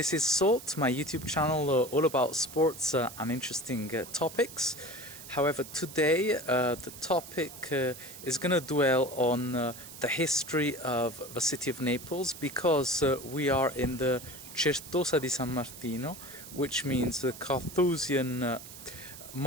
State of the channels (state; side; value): noise; right; hiss, 14 dB below the sound